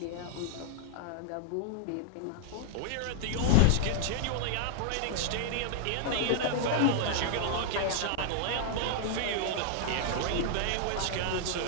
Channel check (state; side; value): different; both; correlation -0.01